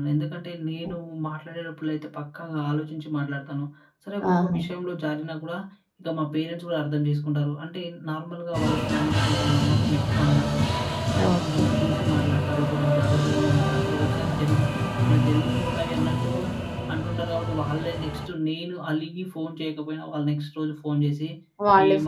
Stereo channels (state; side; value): identical; both; correlation 1.00